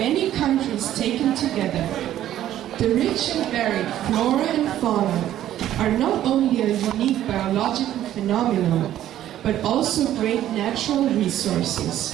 countries taken together. The rich and varied flora and fauna are not only a unique biological phenomenon, but also great natural resources.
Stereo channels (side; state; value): left; quieter; 12.3 dB